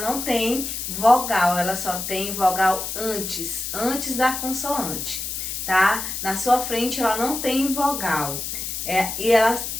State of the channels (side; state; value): left; noise; hiss, 5 dB below the sound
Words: não tem vogal, ela só tem vogal antes da consoante, tá? Na sua frente ela não tem vogal, e ela